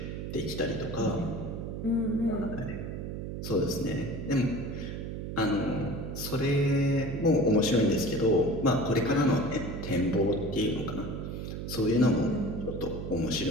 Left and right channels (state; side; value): noise; right; hum, 6 dB below the sound